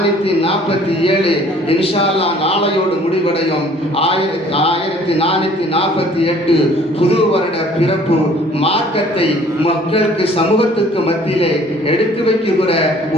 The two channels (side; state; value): both; normal; correlation 0.55